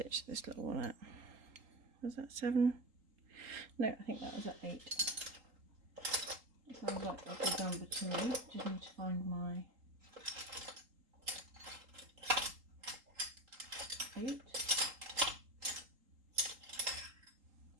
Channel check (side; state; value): left; late; 3.8 ms